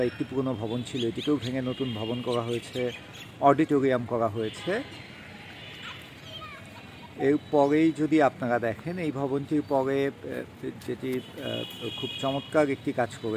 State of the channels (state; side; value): identical; both; correlation 1.00